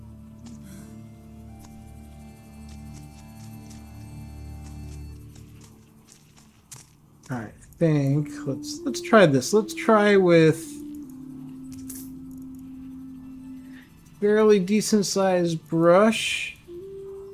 Alright, I think let's try this. Let's try with fairly decent sized brush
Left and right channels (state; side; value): identical; both; correlation 1.00